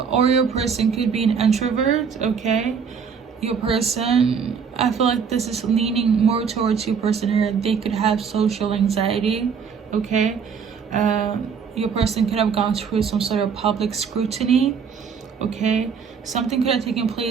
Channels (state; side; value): quieter; left; 6.4 dB